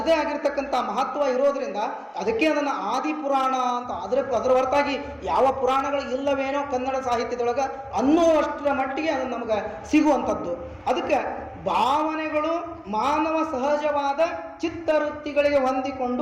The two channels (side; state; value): both; identical; correlation 1.00